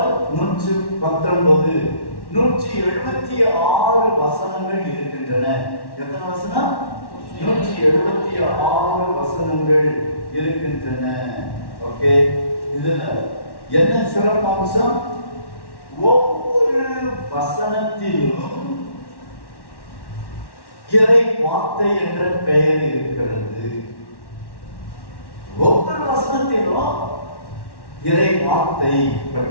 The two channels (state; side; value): late; right; 1.1 ms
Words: 119. 176 வசனங்கள் இருக்கின்றன. எத்தனை வசனம்? 176 வசனங்கள் இருக்கின்றன. ஓகே, இதுல என்ன சிறப்பம்சம்? ஒவ்வொரு வசனத்திலும் இறை வார்த்தை என்ற பெயர் இருக்கிறது. ஒவ்வொரு வசனத்திலும் இறை வார்த்தை